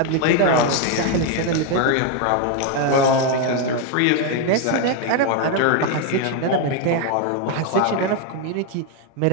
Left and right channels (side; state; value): both; different; correlation 0.01